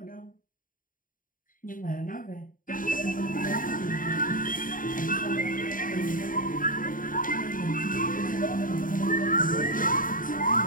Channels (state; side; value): late; right; 0.39 ms